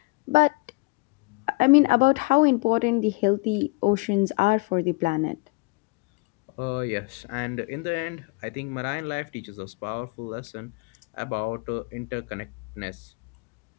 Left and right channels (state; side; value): quieter; right; 27.7 dB